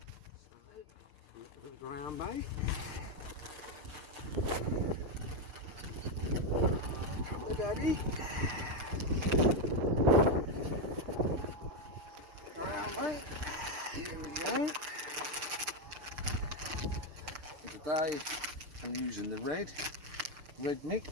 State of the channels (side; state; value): left; late; 6.6 ms